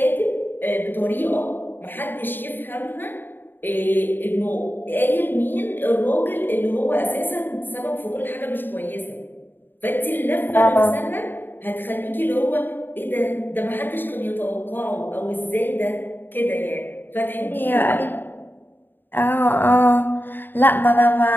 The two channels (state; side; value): late; right; 0.094 ms